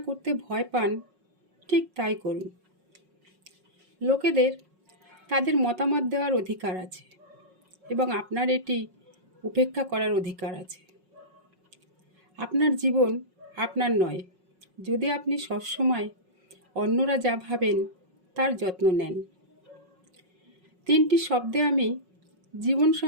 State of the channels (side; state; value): left; late; 5.4 ms